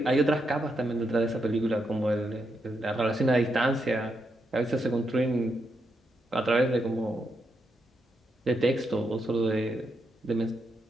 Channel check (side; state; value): both; normal; correlation 0.82